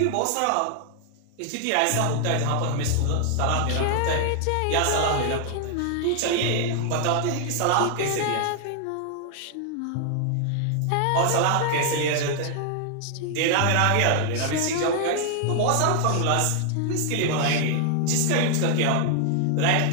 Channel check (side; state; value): both; different; correlation 0.00